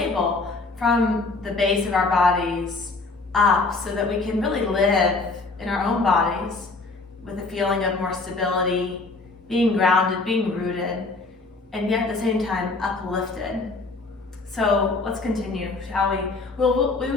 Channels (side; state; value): right; quieter; 3.6 dB